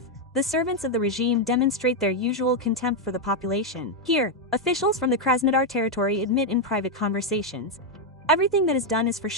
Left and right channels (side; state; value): both; normal; correlation 0.02